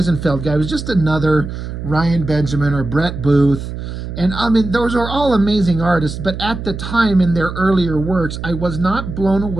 guy was just another Ryan Benjamin or Brett Booth. And I mean, those are all amazing artists, but at the time in their earlier works, I was not blown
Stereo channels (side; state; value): right; noise; hum, 8 dB below the sound